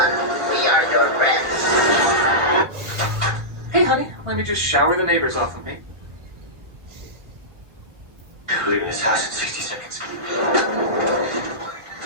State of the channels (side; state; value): left; late; 1.3 ms